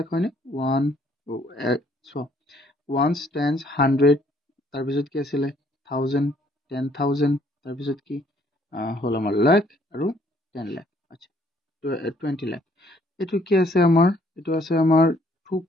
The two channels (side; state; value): both; normal; correlation 0.64